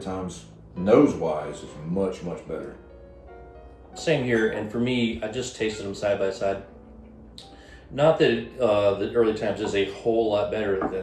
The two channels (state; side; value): identical; both; correlation 1.00